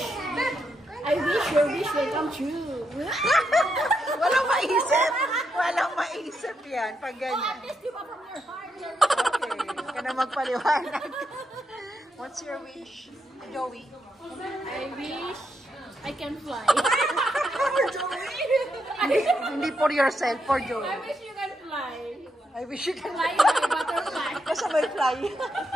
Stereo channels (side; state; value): both; normal; correlation 0.81